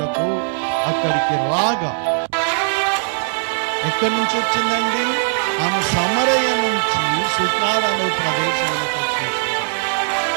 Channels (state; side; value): silent; left; digital silence